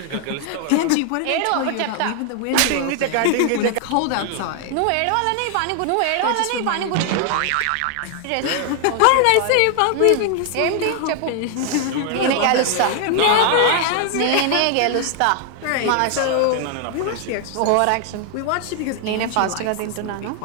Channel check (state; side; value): different; both; correlation 0.00